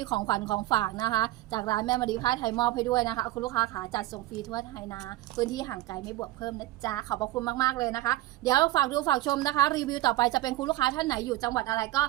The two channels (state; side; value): quieter; left; 16.1 dB